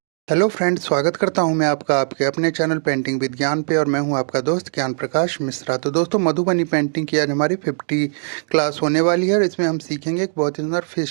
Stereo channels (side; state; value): left; silent; digital silence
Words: Hello friends, स्वागत करता हूं मैं आपका आपके अपने चैनल पेंटिंग विज्ञान पे। और मैं हूं आपका दोस्त ज्ञान प्रकाश मिश्रा। तो दोस्तों, मधुबनी पेंटिंग की आज हमारी 50 क्लास होने वाली है और इसमें हम सीखेंगे एक बहुत ही सुंदर